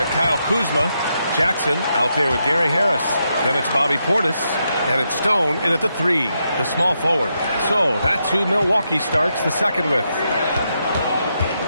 Kyle Kuzma, Jackson out there with Gary Harris. Then it's Bobby Portis, and it's Stone in at the 3, the small forward. So that's who Milwaukee starts the second with.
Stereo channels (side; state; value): both; inverted; correlation -0.82